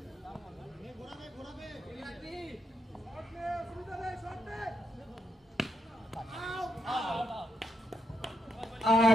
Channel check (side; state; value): both; normal; correlation 0.82